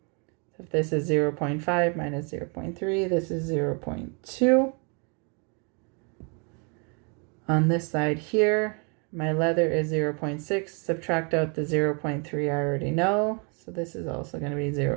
So if this is 0.5 minus 0.3, this is 0.2. On this side here, my leather is 0.6. Subtract out the 0.3 I already know. So this is also going to be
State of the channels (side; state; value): left; quieter; 35.8 dB